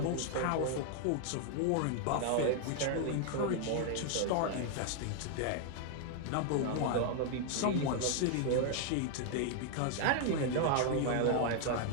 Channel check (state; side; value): different; both; correlation 0.00